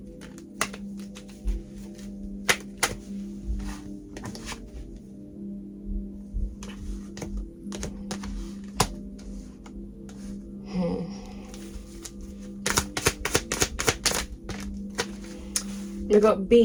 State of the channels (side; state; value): both; identical; correlation 1.00